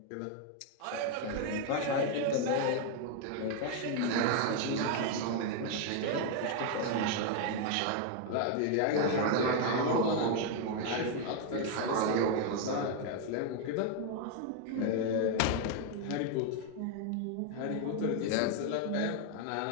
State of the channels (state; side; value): different; both; correlation 0.01